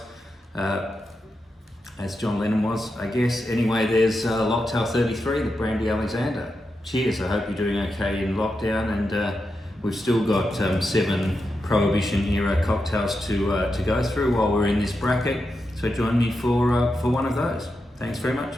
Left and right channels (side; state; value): both; normal; correlation 0.87